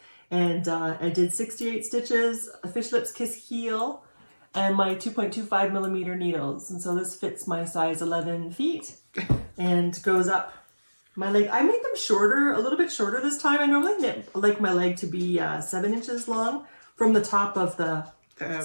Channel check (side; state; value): both; inverted; correlation -1.00